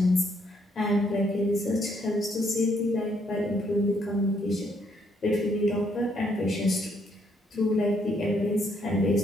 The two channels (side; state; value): both; normal; correlation 0.72